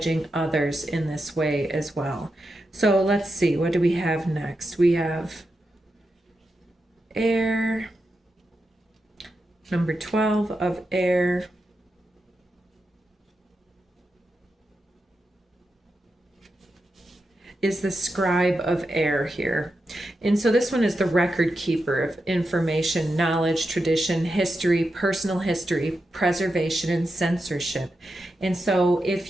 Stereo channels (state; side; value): normal; both; correlation 0.88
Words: others in this way as well. So let's see, what do we have next? We have air, number 12 of air. Is the scribe of air here. And so this one is the record keeper of information, knowledge, tradition, history, personal history, preservation, and censorship. And so